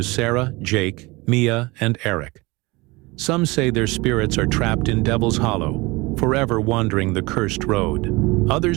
Sarah, Jake, Mia, and Eric. Some say their spirits are trapped in Devil's Hollow, forever wandering the cursed road.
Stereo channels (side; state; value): left; quieter; 23.6 dB